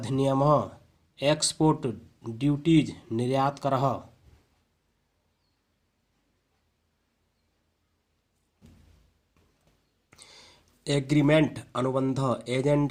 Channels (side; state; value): both; identical; correlation 1.00